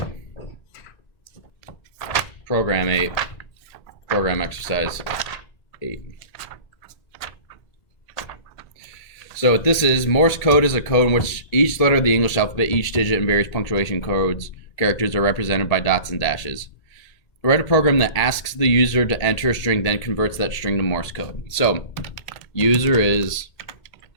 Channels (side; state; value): right; late; 1.8 ms